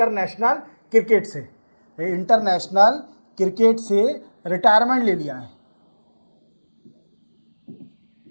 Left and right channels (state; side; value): inverted; both; correlation -1.00